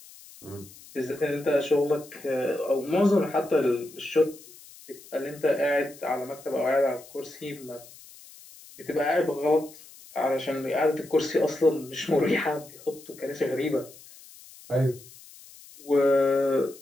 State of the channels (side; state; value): left; noise; hiss, 21 dB below the sound